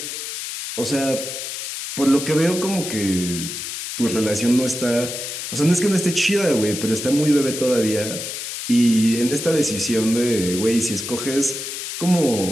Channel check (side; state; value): left; noise; hiss, 6 dB below the sound